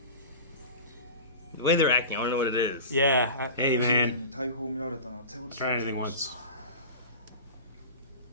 The way they're acting, I don't know what it is. Yeah. Hey, man. 大砲を見られたのは手落ち Try anything once.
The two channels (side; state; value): both; inverted; correlation -0.32